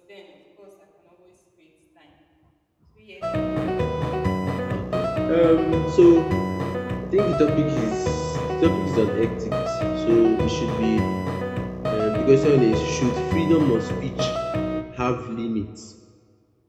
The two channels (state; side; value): identical; both; correlation 1.00